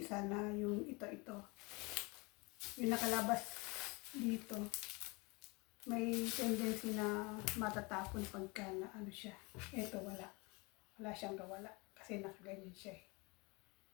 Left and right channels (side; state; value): right; quieter; 27.5 dB